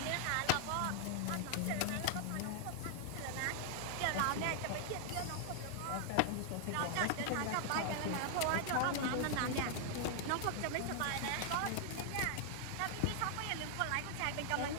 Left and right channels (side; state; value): both; different; correlation 0.00